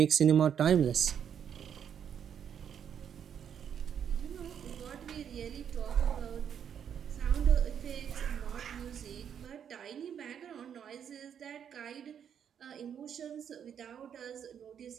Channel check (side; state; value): left; quieter; 8.4 dB